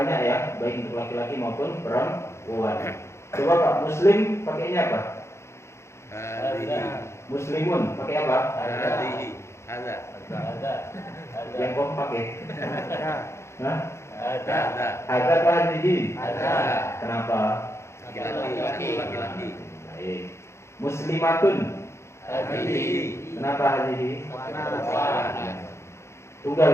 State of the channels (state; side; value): late; right; 0.13 ms